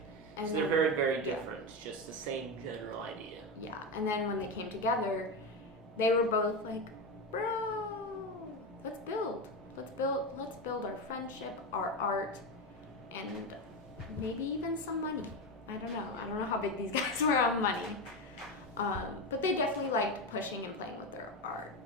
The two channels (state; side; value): normal; both; correlation 0.16